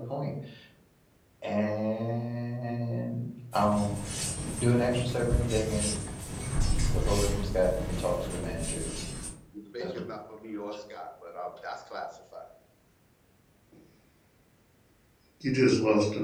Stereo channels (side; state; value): both; identical; correlation 1.00